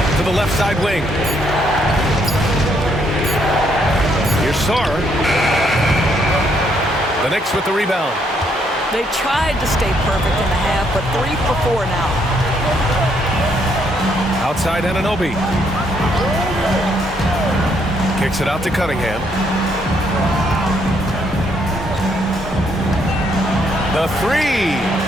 To the left side wing. Here's Sarr. The Knicks with the rebound. They tried to stay perfect in the half, but 3 for 4 now. Outside Anunoby. Kicks it out to Cunningham. The 3.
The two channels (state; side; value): normal; both; correlation 0.72